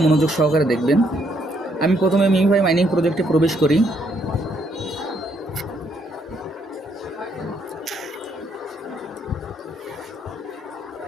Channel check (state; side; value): normal; both; correlation 0.72